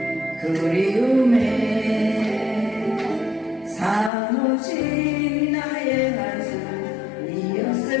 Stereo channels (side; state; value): right; drops out; at 4.1 s